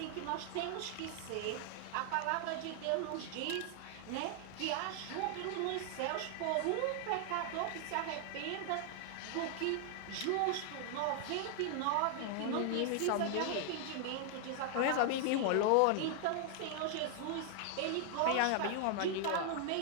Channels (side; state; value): both; different; correlation 0.00